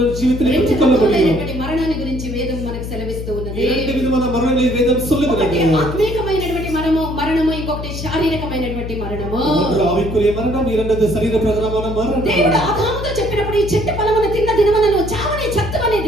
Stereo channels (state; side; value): noise; left; hum, 7 dB below the sound